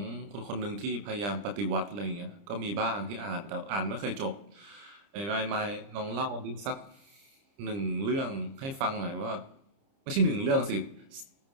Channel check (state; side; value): late; left; 30 ms